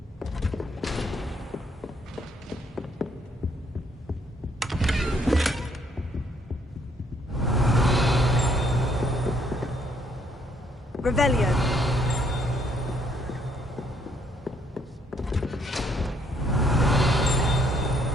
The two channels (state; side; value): normal; both; correlation 0.68